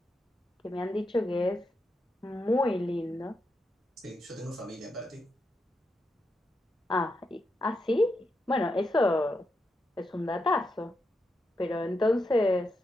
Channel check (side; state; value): both; normal; correlation 0.84